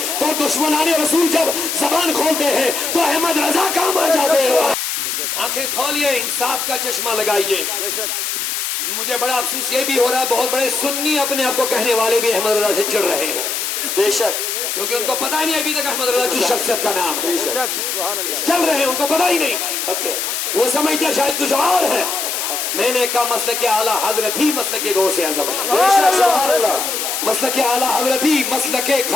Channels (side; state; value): left; noise; hiss, 2 dB below the sound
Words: تو دشمنان رسول جب زبان کھولتے ہیں تو احمد رضا کام آ جاتے ہیں۔ آنکھیں کھولیے، انصاف کا چشمہ لگائیے۔ مجھے بڑا افسوس یہ بھی ہو رہا ہے بہت بڑے سنی اپنے آپ کو کہنے والے بھی احمد رضا سے چڑھ رہے ہیں، بے شک، کیونکہ ان کو پتہ ہی نہیں ابھی تک احمد رضا کی شخصیت کا نام ہے، چل رہے ہیں ان کو پتہ ہی نہیں، وہ سمجھتے شاید کچھ اور ہے۔ میں نے کہا مسلک اعلیٰ حضرت ہی مسلک غوث اعظم ہے، مسلک اعلیٰ حضرت ہی مسلک